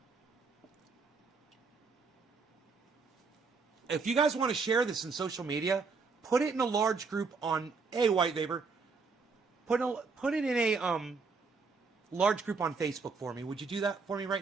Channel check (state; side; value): quieter; left; 4.7 dB